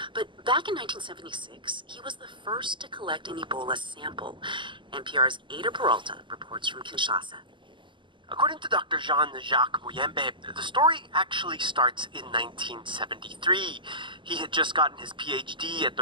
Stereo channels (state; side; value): late; left; 0.23 ms